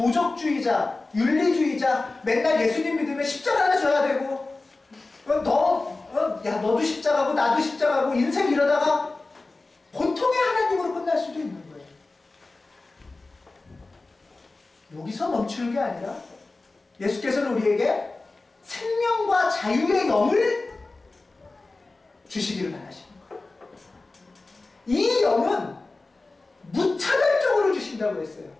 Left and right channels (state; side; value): quieter; right; 3.4 dB